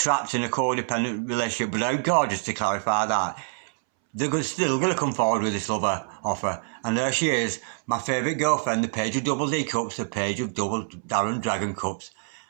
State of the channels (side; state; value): left; silent; 61 dB below the other